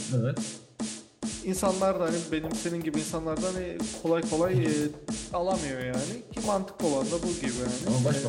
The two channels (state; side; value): identical; both; correlation 1.00